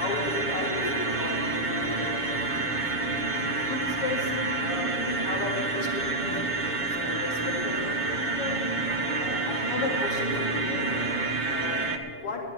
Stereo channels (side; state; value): right; late; 7.2 ms